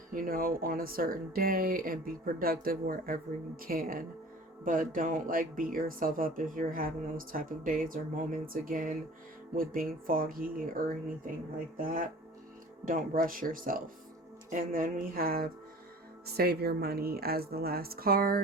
on a certain day, and be productive wherever you can. But don't like beat yourself up if you're having those type of days or moments again with being foggy or anything like that. Don't rush yourself. And then we have Save Your Money as the last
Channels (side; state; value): both; normal; correlation 0.43